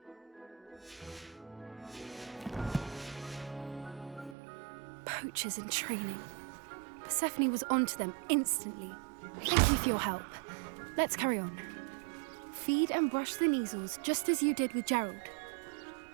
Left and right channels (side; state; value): left; drops out; at 4.4 s